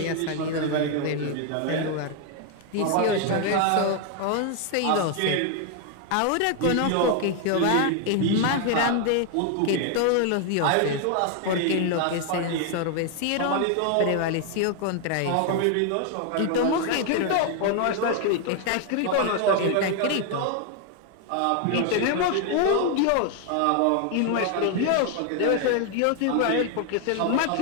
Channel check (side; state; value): both; different; correlation 0.00